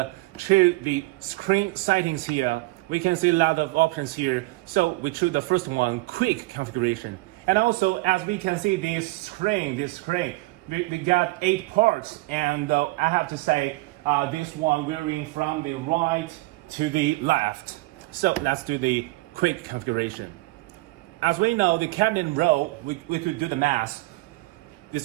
choose the screen settings here. We can see a lot of options here. So we choose the first one, quick configuration. And also, as we can see, this screen, we got 8 parts. And I have to say, this one varying from the right to the left. So let's do the quick configuration. As we know, the cabinet row, we could do the math.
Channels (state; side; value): quieter; left; 22.3 dB